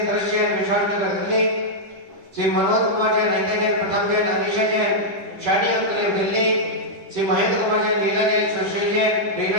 दृश्य जैन, विशाल नगर दिल्ली, श्री मनोज कुमार जैन, नीता जैन, प्रथम जैन, अनिशा जैन, शानी अंकलेव दिल्ली, श्री महेंद्र कुमार जैन, लीला जैन, सुश्री जैन,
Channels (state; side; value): late; left; 10 ms